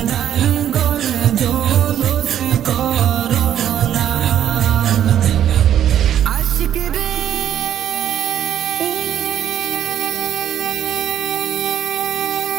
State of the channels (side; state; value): left; quieter; 10.4 dB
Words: জুলুস করো না আশিক রে